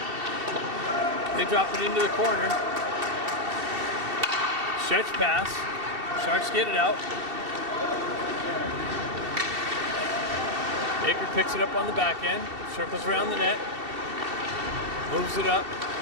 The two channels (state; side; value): late; left; 2.7 ms